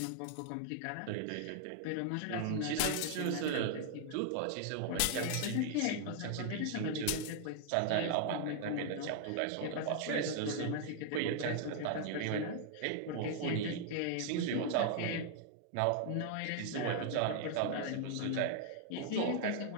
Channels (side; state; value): both; different; correlation 0.00